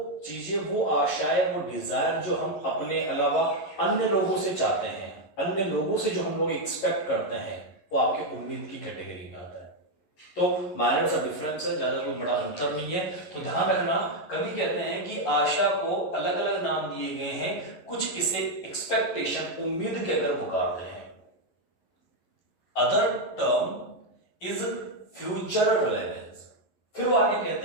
चीजें, वो आशाएं, वो डिजायर जो हम अपने अलावा अन्य लोगों से चाहते हैं, अन्य लोगों से जो हम लोग एक्सपेक्ट करते हैं, वो आपके उम्मीद की कैटेगरी में आता है। तो माइनर सा डिफरेंस है, ज्यादा कोई बड़ा अंतर नहीं है। तो ध्यान रखना, कवि कहते हैं कि आशा को अलग अलग नाम दिए गए हैं, कुछ इसे एक्सपेक्टेशन, उम्मीद कहकर पुकारते हैं। Other term is future relevance. फिर वो आगे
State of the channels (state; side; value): late; right; 11 ms